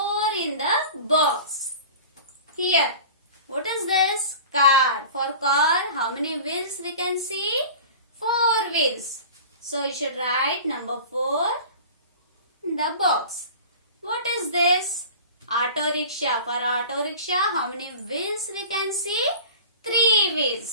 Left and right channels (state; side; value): inverted; both; correlation -0.39